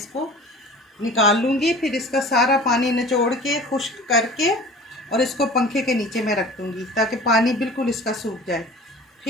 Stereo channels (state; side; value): normal; both; correlation 0.42